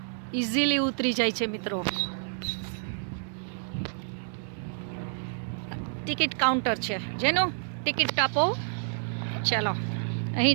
ઇઝીલી ઉતરી જાય છે મિત્રો। ટિકિટ કાઉન્ટર છે, જેનું ટિકિટ આપો। ચાલો,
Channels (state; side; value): silent; left; digital silence